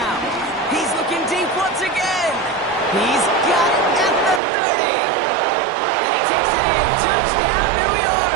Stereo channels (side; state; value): left; drops out; at 4.4 s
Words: He's looking deep once again. He's got it at the 30. And he takes it in. Touchdown, New York.